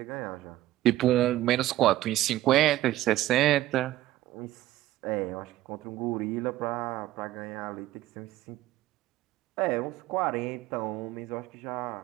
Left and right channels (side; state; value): left; quieter; 15.1 dB